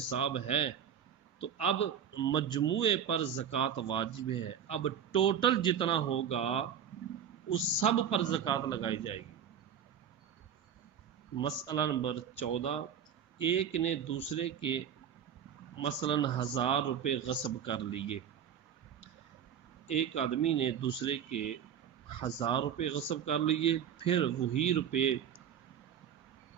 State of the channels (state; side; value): quieter; left; 8.4 dB